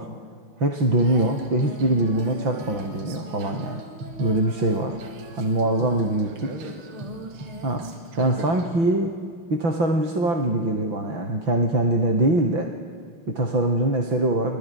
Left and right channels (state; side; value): late; left; 6.0 ms